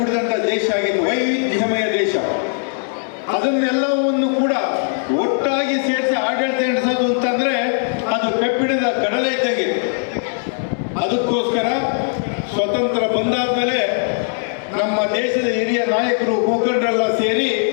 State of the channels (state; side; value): silent; right; 66 dB below the other